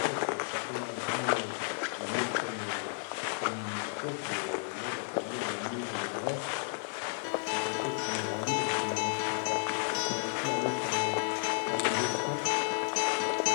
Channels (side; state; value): right; silent; digital silence